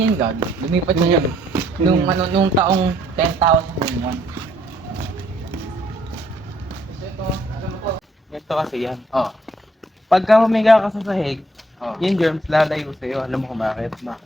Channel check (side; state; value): both; normal; correlation 0.67